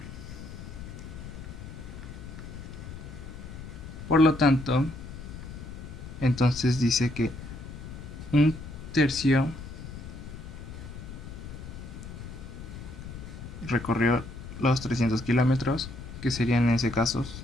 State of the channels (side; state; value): left; noise; rumble, 11 dB below the sound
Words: Por lo tanto, entonces dice que un tercio recorrió los 300 kilómetros, que serían en ese caso